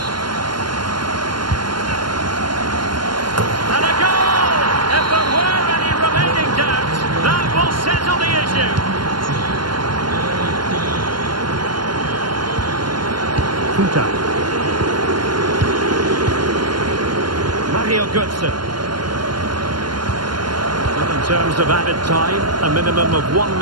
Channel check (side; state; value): left; late; 0.72 ms